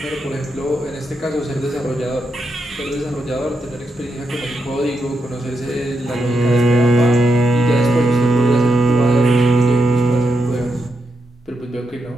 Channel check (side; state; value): both; normal; correlation 0.83